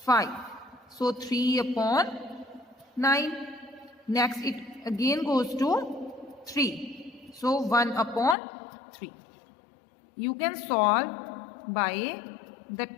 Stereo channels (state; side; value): drops out; right; at 8.3 s